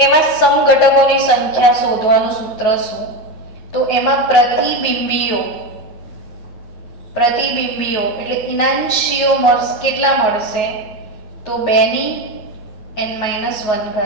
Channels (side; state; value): right; late; 9.4 ms